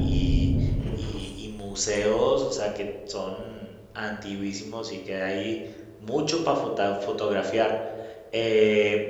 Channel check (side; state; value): both; identical; correlation 1.00